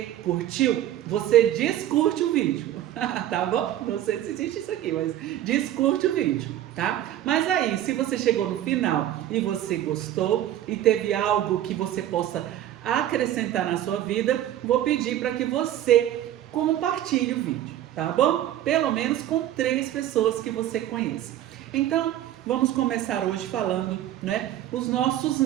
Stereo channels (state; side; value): quieter; left; 12.3 dB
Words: curtiu, você descurte o vídeo, tá bom? Não sei se existe isso aqui, mas descurte o vídeo, tá? Mas aí, se você chegou no final e você gostou e teve algo que você possa acrescentar na sua vida, vou pedir para que você compartilhe o vídeo, tá bom? Pelo menos com 3 pessoas que você conheça. Então, vamos começar hoje falando, né, os nossos